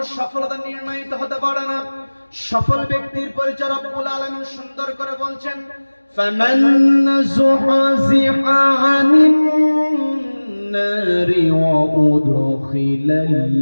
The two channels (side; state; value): both; inverted; correlation -1.00